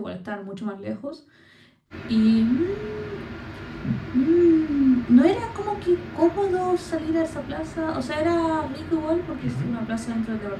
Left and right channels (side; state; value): both; identical; correlation 1.00